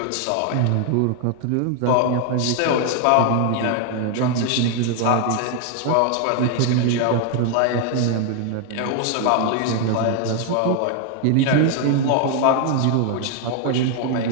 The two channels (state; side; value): different; both; correlation 0.00